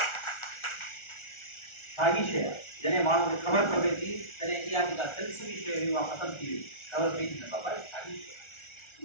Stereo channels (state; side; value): late; right; 1.4 ms